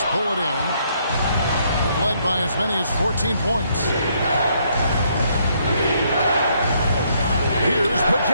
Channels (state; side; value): inverted; both; correlation -0.71